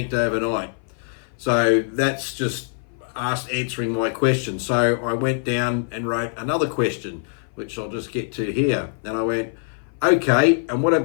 overnight. So that's just answering my question. So I went down and wrote another question, which I'll just get to here. And I went, okay, and what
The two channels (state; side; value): silent; right; 56 dB below the other